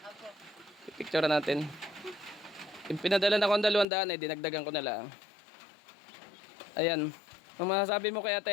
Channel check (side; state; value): right; drops out; at 3.9 s